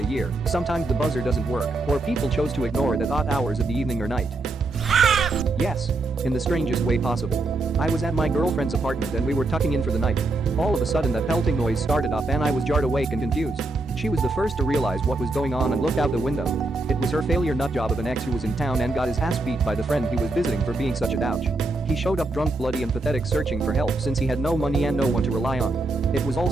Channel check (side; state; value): left; quieter; 3.1 dB